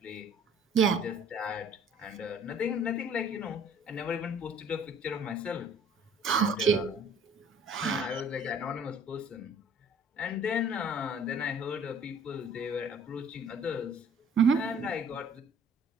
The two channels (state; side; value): normal; both; correlation 0.53